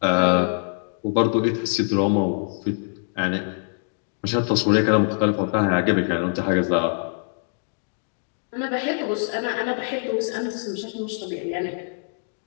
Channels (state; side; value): silent; right; digital silence